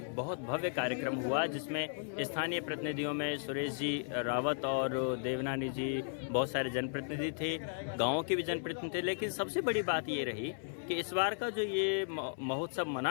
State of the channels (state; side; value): silent; right; 54 dB below the other